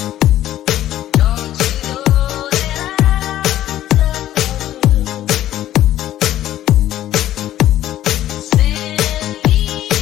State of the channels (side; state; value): right; quieter; 13.0 dB